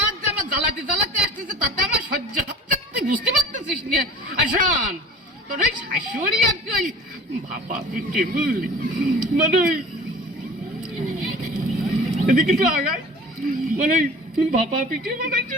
জামা জ্বালাতে জ্বালাতে আসতেছে, তাতে আমার সহ্য হচ্ছে, তুই বুঝতে পারতেছিস না? আসন তোর ওই শাশুড়ি আর কি ওই ভাপা পিঠে বুঝলি, মানে এদিকে একটু আগায়, মানে ভাপা পিঠে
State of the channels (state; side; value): normal; both; correlation 0.42